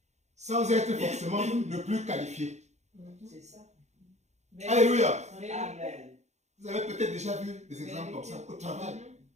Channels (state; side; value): late; left; 0.33 ms